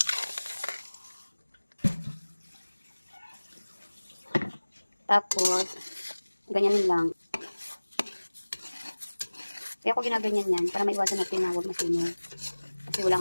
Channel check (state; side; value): inverted; both; correlation -1.00